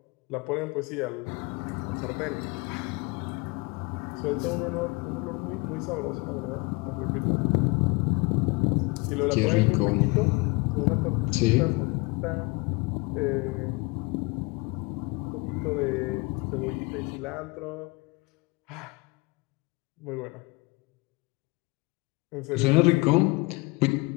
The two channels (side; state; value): right; quieter; 26.1 dB